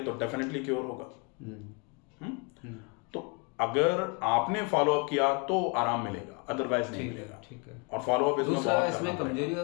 तो डेफिनेटली क्योर होगा। तो अगर आपने फॉलो अप किया तो आराम मिलेगा, अदरवाइज नहीं मिलेगा। ठीक है। और फॉलो अप इसमें कमजोरी का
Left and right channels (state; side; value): quieter; right; 31.6 dB